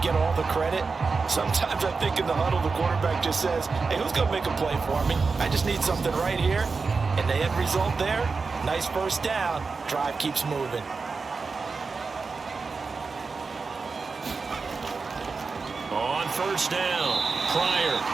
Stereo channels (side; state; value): left; quieter; 4.5 dB